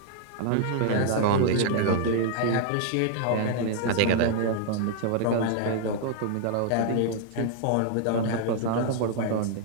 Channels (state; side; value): different; both; correlation -0.01